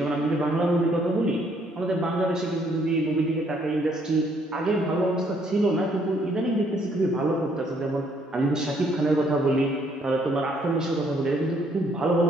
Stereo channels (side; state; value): both; normal; correlation 0.67